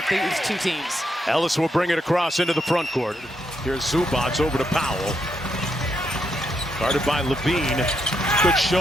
these two teams. Ellis will bring it across into the front court. Here's Zubac over to Powell. Guarded by Levine. Good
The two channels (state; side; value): normal; both; correlation 0.79